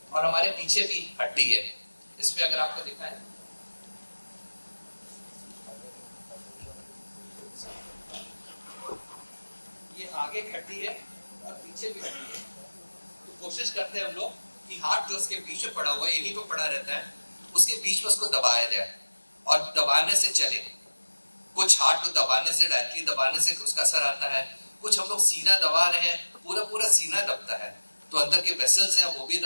और हमारे पीछे भी हड्डी है। इसमें अगर आपको दिखाएं, ये आगे एक हड्डी है और पीछे भी हड्डी है। तो कोशिश करते हैं हम लोग कि हार्ट जो उसके बीच में पड़ा हुआ है, यहीं पे पड़ा रहता है, उसके बीच में उसको दबाया जाए और दबाने से चले। कुछ हार्ट को दबाने से, डायरेक्टली दबाने से उसका असर आता है। कुछ हम लोग सीना दबा रहे हैं, पूरा पूरा सीना दबता है तो अंदर के वेसल्स हैं वो भी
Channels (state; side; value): inverted; both; correlation -1.00